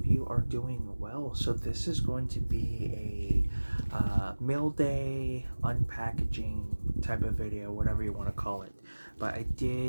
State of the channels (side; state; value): both; inverted; correlation -1.00